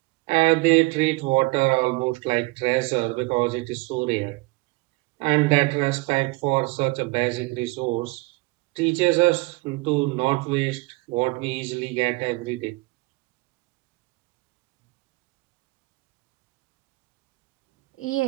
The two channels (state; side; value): quieter; left; 24.0 dB